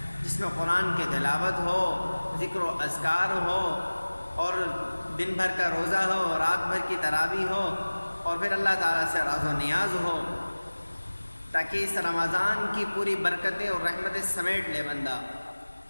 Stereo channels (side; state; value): both; inverted; correlation -1.00